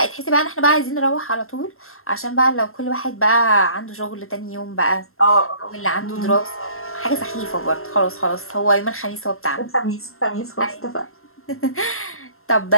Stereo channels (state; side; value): late; right; 0.62 ms